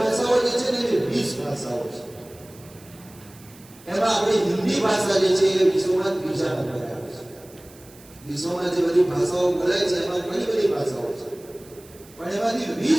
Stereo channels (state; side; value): noise; right; hiss, 23 dB below the sound